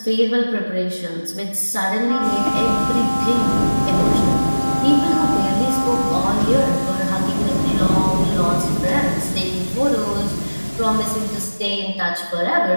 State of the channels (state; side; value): inverted; both; correlation -1.00